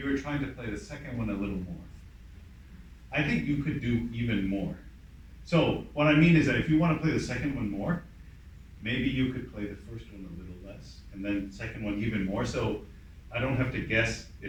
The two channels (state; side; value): identical; both; correlation 1.00